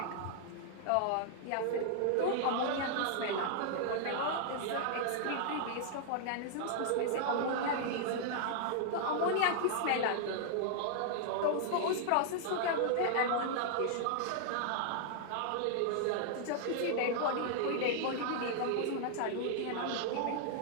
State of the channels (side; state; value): both; different; correlation -0.01